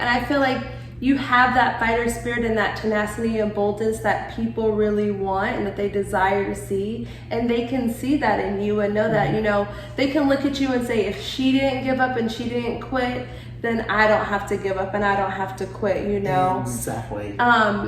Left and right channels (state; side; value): identical; both; correlation 1.00